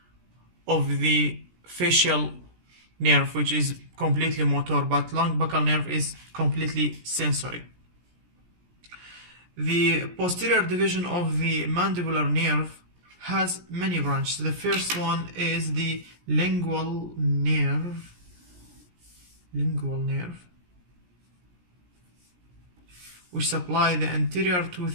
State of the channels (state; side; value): late; left; 17 ms